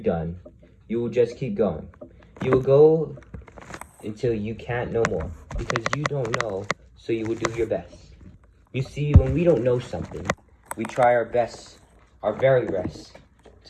done, you will just keep going. You will go until you can't no more, because you don't know, so you will do your best. You see, when we don't know something, we try our best, our very best,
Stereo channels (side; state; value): both; identical; correlation 1.00